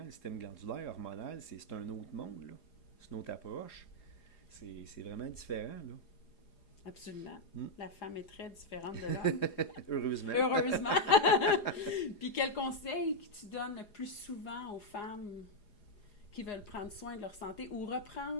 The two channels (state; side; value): late; right; 4.9 ms